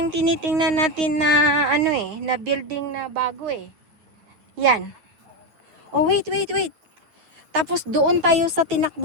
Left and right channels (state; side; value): late; left; 9.8 ms